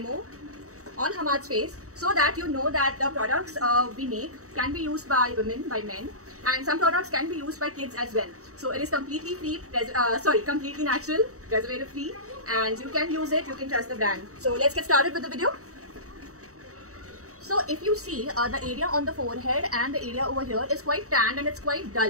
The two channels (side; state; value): left; late; 0.65 ms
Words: on Hamad's face so that you know that the products we make can be used by women, by men, and some products can be used by kids as well. So it is completely free, completely natural, preservative free, and you can use it, you can trust the brand. So let's get started with the video. So if you see the area on the forehead and the area over here is quite tanned and it's quite